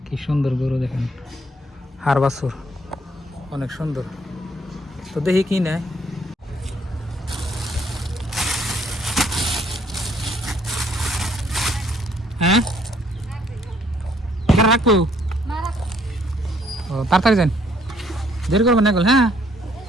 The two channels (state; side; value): normal; both; correlation 0.66